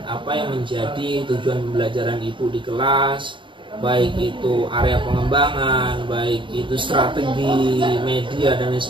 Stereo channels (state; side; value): late; left; 0.24 ms